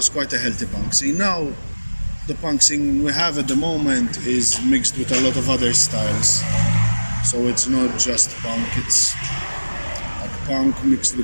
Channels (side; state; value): both; inverted; correlation -1.00